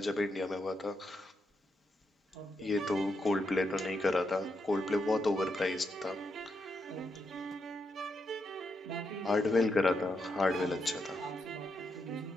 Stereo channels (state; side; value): normal; both; correlation 0.82